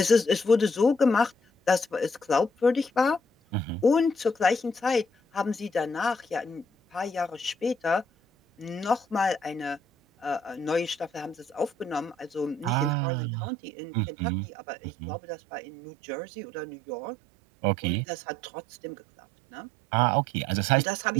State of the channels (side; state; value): left; drops out; at 13.0 s